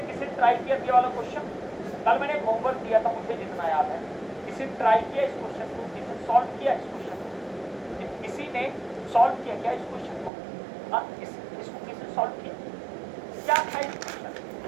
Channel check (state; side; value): drops out; left; at 10.3 s